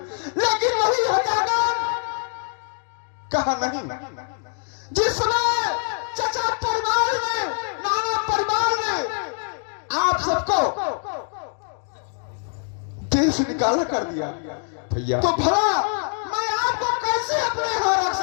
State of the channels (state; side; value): silent; right; 63 dB below the other